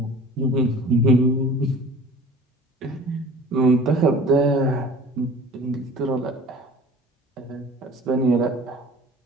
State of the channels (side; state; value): both; normal; correlation 0.44